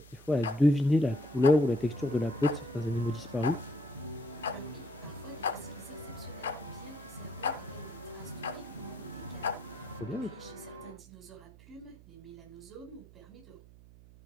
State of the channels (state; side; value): noise; right; hum, 21 dB below the sound